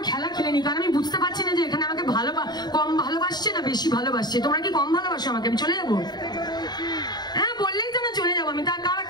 খেলা খেলে নি, কারণ আমি বুঝতে পারছি না যে এখানে আমাকে কম ভালোবাসছে না বেশি ভালোবাসছে। তোমরা কি কম ভালোবাসো আমাকে? আমি চলে যাবো? হ্যাঁ, বললেই তো না চলে যাবো আমি। তা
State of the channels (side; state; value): right; late; 0.20 ms